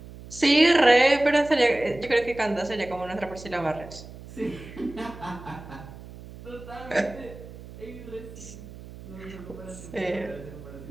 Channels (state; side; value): noise; right; hum, 16 dB below the sound